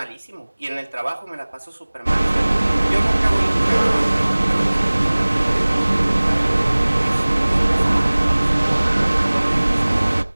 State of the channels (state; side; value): inverted; both; correlation -1.00